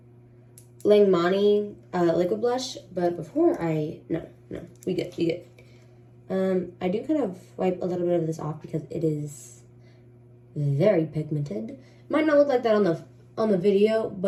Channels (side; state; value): both; identical; correlation 1.00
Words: Langmani liquid blush, but before no, we good. I do kind of wipe a little bit of this off because it is very pigmented. Might not look like that on the video,